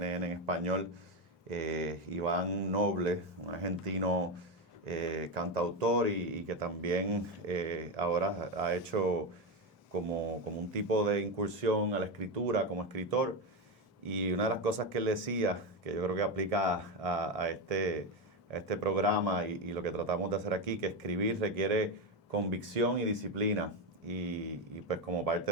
en español, Iván Noble, un argentino cantautor y que también ahora ha hecho como un tipo de incursión a la escritura como escritor. Y una de las cosas que él decía, que yo creo que aplica a este programa y lo que tratamos de hacer aquí, que escribir requiere convicción y disciplina. Y pues como parte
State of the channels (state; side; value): normal; both; correlation 0.12